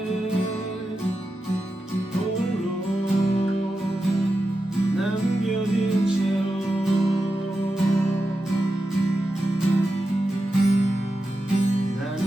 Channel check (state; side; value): normal; both; correlation 0.90